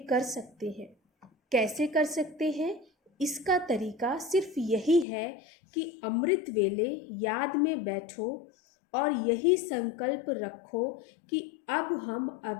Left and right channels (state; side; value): drops out; right; at 5.1 s